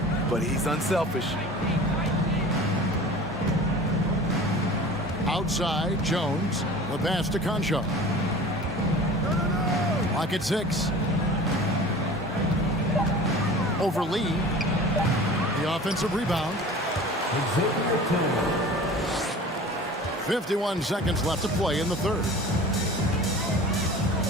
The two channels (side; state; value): both; normal; correlation 0.40